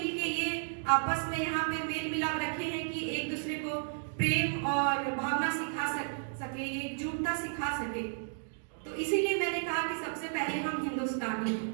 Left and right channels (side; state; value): left; silent; digital silence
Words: के ये आपस में यहाँ पे मेल मिलाप रखे हैं कि एक दूसरे को प्रेम और भावना सिखा सके, एकजुटता सिखा सके। तो इसीलिए मैंने कहा कि सबसे पहले हम हिंदुस्तानी हैं।